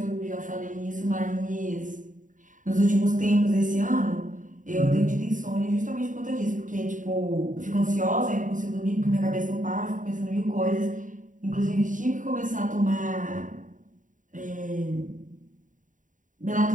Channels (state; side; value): late; left; 0.38 ms